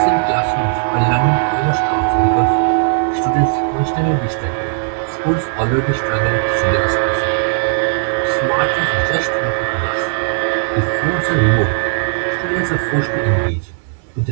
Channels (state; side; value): silent; left; 68 dB below the other